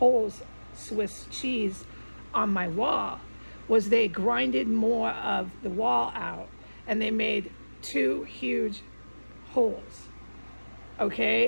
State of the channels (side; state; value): both; inverted; correlation -1.00